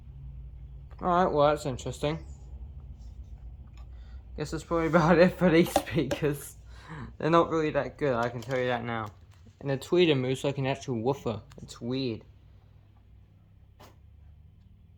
Alright, well that's interesting. Guess that's probably about it for these speakers. They're not really that good, I can tell you that now. And the tweeter moves like an actual woofer. It's weird.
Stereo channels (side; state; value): both; identical; correlation 1.00